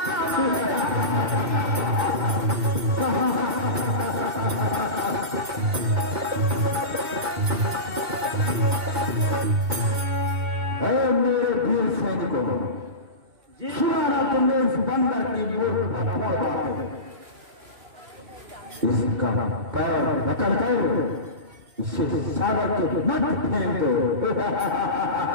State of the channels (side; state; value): left; late; 2.7 ms